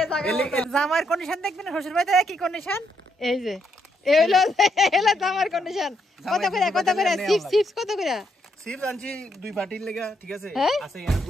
জামাইয়ের কন্ডিশন দেখবেন শ্বশুর বাড়িতে কি কন্ডিশন এই যে জামাইয়ের কন্ডিশন কত করে চিপস কত করে চিপস আনছি দুই পার্টির লাগা ঠিক আছে আছে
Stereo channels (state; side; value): normal; both; correlation 0.76